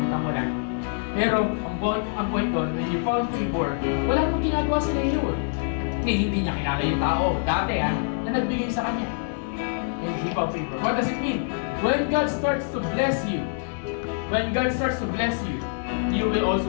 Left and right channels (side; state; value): right; silent; digital silence